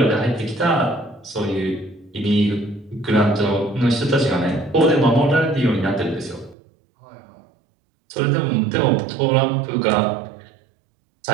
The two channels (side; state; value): left; drops out; at 6.6 s